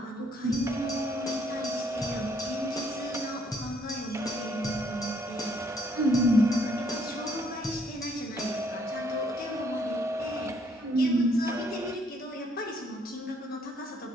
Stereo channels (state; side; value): normal; both; correlation 0.67